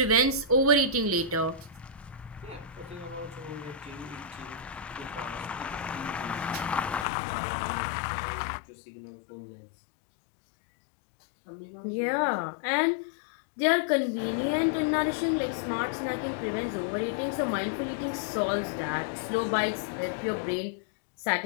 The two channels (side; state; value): right; drops out; at 7.1 s